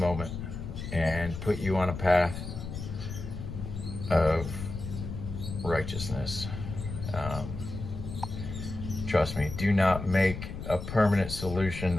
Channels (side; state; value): left; noise; rumble, 7 dB below the sound